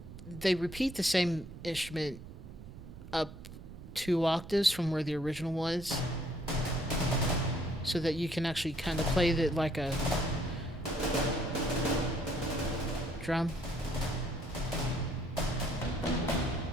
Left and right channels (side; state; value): right; noise; rumble, 14 dB below the sound